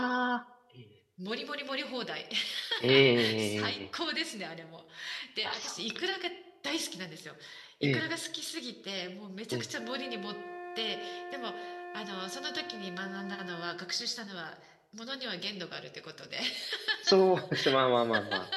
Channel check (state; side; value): identical; both; correlation 1.00